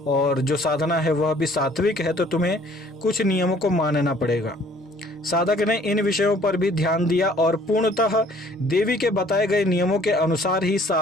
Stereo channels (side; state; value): both; normal; correlation 0.57